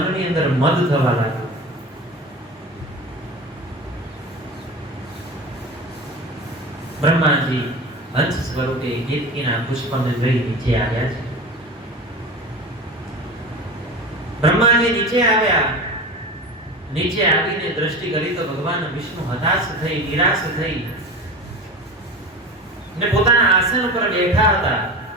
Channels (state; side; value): normal; both; correlation 0.30